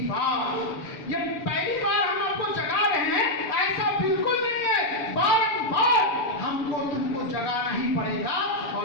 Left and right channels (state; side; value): late; right; 6.6 ms